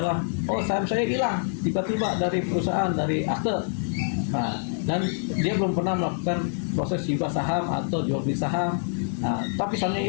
saham saya hilang tiba-tiba dari perusahaan, dari akte, nah, dan dia belum pernah melakukan proses hibah saham atau jual beli saham, nah, tapi sahamnya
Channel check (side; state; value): right; silent; digital silence